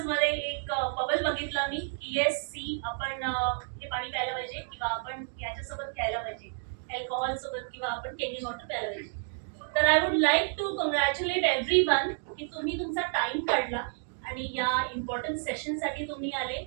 मध्ये एक बबल बघितला मी की येस सी आपण हे पाणी प्यायला पाहिजे किंवा आपण याच्यासोबत खेळायला पाहिजे, अल्कोहोल सोबत किंवा आपण केमिकल वॉटर प्यायला पाहिजे. तर I would like to congratulate everyone की तुम्ही तुमचा टाइम काढला आणि या इम्पॉर्टंट सेशन साठी तुम्ही आले.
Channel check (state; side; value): silent; left; 58 dB below the other